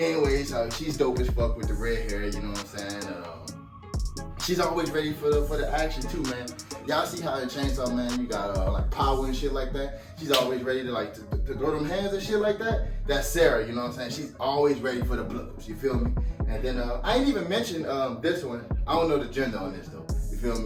anyways, she's dope as fuck with the red hair, you know what I'm saying? She's always ready for the action too, man. Y'all see how in Chainsaw Man you got like power and shit like that. She's always ready to like to throw them hands and shit like that. That's Sarah, you know what I'm saying? She's always ready for the blows. You feel me? And then I ain't even mentioned this one. I don't know the gender on this though. You feel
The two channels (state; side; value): identical; both; correlation 1.00